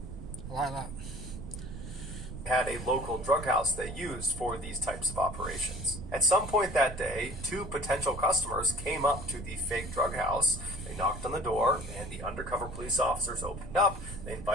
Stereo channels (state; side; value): noise; right; rumble, 10 dB below the sound